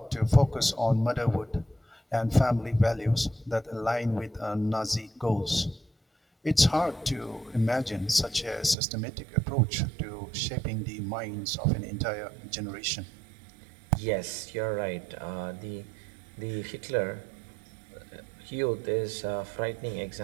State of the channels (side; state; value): left; drops out; at 8.8 s